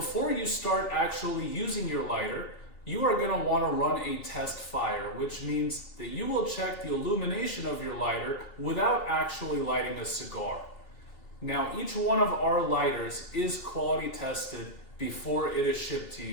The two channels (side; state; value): right; late; 2.7 ms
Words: you start actually using your lighter, you are going to want to run a test fire, which means that you will check the illumination of your lighter without actually lighting a cigar. Now, each one of our lighters is quality tested before it is shipped to